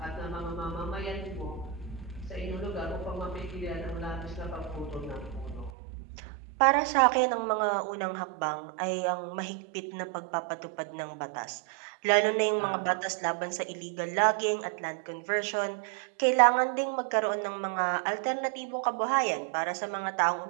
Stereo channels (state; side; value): drops out; left; at 5.7 s